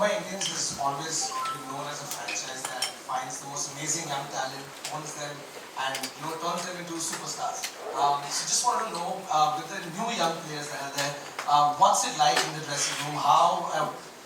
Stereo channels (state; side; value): identical; both; correlation 1.00